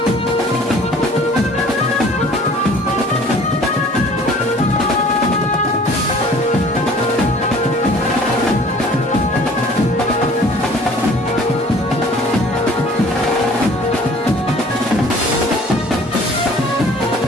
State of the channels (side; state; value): both; normal; correlation 0.51